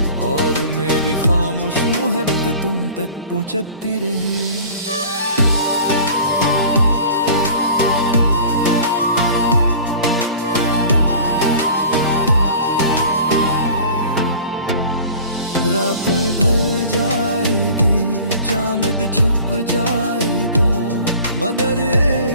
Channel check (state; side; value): inverted; both; correlation -0.43